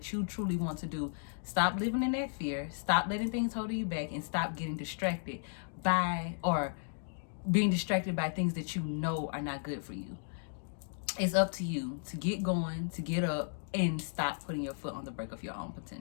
you truly want to do. Stop living in that fear. Stop letting things hold you back, and stop getting distracted by or being distracted by things that you know are not good for you. It's up to you to get going, to get up, and stop putting your foot on the brake of your own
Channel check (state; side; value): silent; right; digital silence